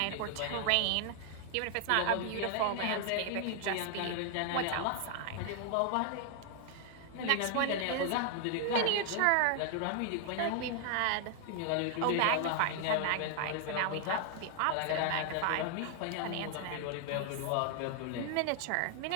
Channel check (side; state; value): both; different; correlation 0.00